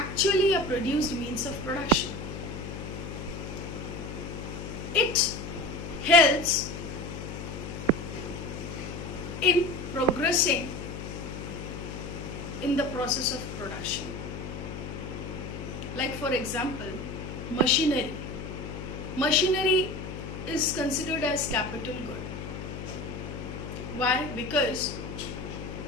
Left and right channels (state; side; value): noise; left; hum, 8 dB below the sound